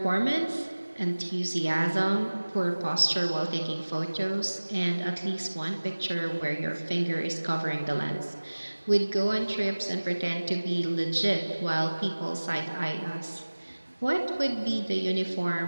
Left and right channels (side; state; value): both; inverted; correlation -1.00